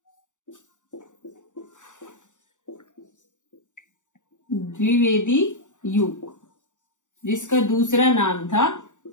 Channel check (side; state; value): right; late; 0.85 ms